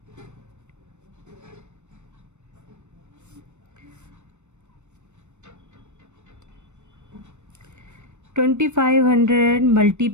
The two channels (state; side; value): late; left; 0.83 ms